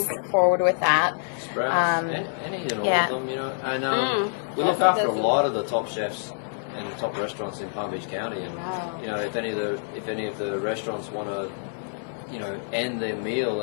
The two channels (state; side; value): silent; right; digital silence